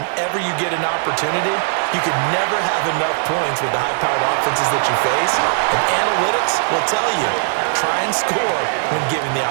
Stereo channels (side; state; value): left; silent; digital silence